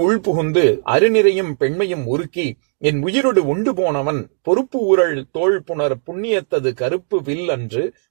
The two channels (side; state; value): left; silent; digital silence